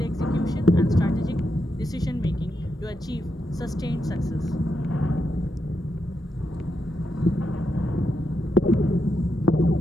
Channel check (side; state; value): both; normal; correlation 0.84